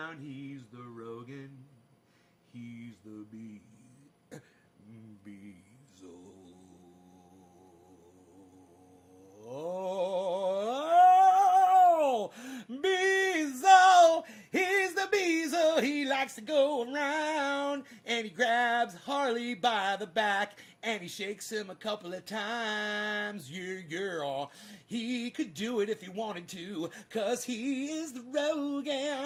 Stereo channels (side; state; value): both; identical; correlation 1.00